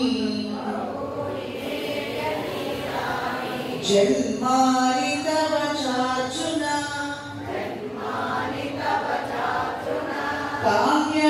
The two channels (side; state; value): both; identical; correlation 1.00